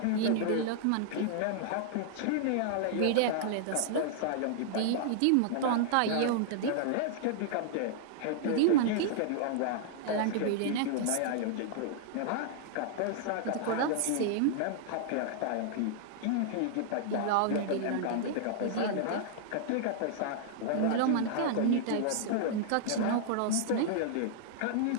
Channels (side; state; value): both; different; correlation -0.01